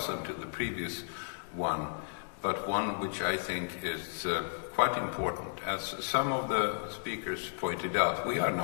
to the previous one, but one which I think is quite important. As some of the speakers pointed out, we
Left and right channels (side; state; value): right; silent; digital silence